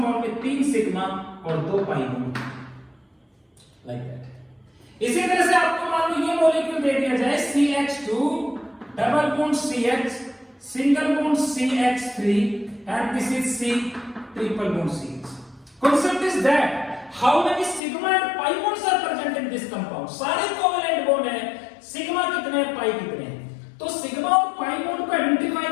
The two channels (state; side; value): drops out; right; at 17.8 s